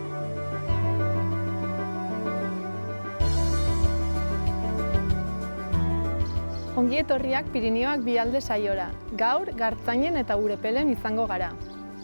Ongi etorriak Pirinioak Bialde saiora. Gaur, Gartzainen eta Urepelen izango gara.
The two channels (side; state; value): both; inverted; correlation -1.00